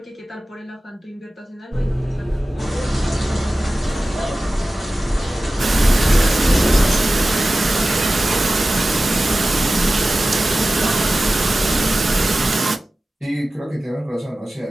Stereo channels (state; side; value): normal; both; correlation 0.95